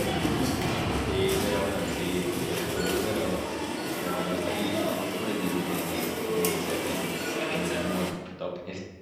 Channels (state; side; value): identical; both; correlation 1.00